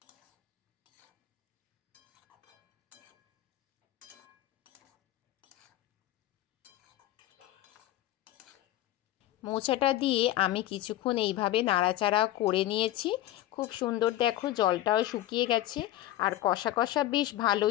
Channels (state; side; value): quieter; right; 14.1 dB